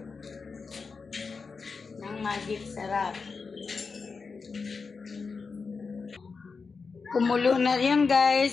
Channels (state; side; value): quieter; right; 4.9 dB